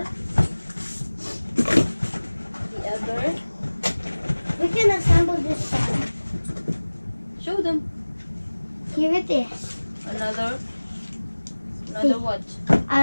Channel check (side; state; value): both; inverted; correlation -1.00